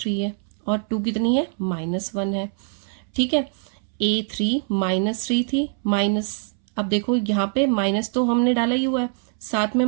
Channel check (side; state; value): left; silent; 63 dB below the other